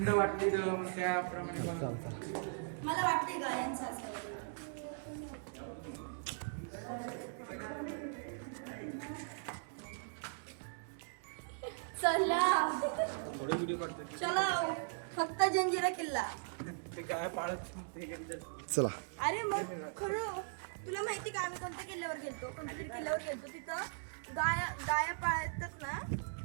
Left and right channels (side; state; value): left; silent; digital silence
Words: वाटते तर मग त्याप्रमाणे बनवतात. मला वाटतंय गायांचं असं चला चला फक्त जंजिरा किल्ला ते काय पाळत ते कधी चला अरे मग खरं तुला माहिती का आम्ही कोणत्या किल्ल्यावर गेलतो कोणत्या तरी किल्ल्यावर गेलतो तिथं गाया पाळतात ना